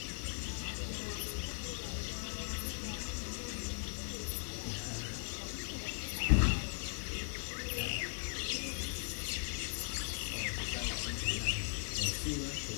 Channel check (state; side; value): silent; right; digital silence